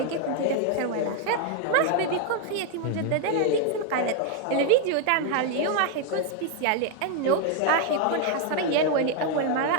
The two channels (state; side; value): different; both; correlation 0.01